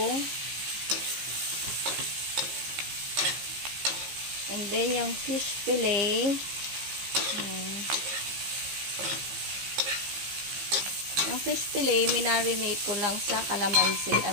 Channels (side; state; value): left; late; 15 ms